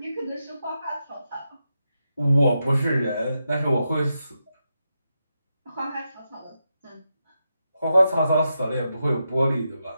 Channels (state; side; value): inverted; both; correlation -0.86